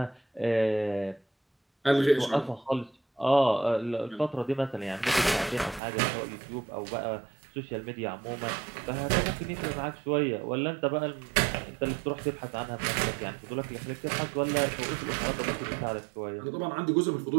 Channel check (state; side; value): drops out; left; at 5.8 s